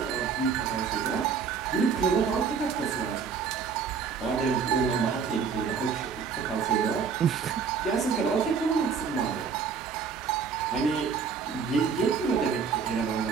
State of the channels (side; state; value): left; quieter; 6.0 dB